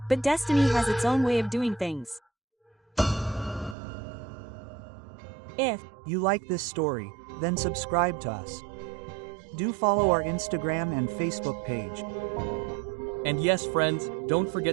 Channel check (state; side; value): drops out; left; at 3.8 s